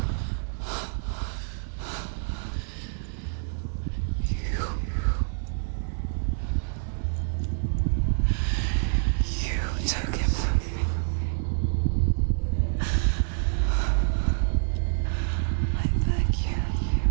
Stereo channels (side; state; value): left; silent; digital silence